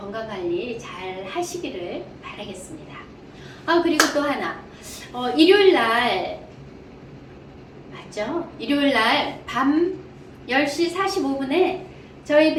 잘 하시기를 바라겠습니다. 그리고 또 하나, 일요일날 맞죠? 일요일날 밤 10시 45분에 저희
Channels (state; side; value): identical; both; correlation 1.00